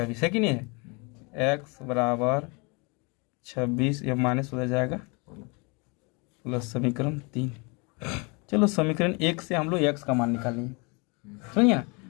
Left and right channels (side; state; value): right; quieter; 30.4 dB